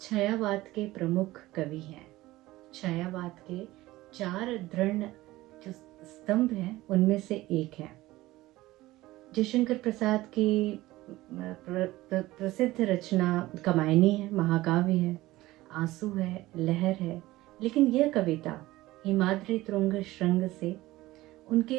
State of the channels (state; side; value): quieter; left; 17.8 dB